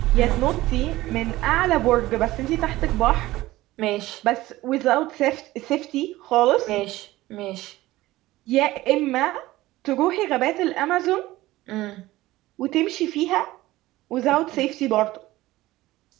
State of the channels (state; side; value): quieter; left; 17.4 dB